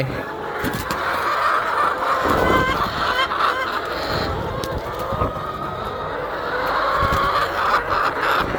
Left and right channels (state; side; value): identical; both; correlation 1.00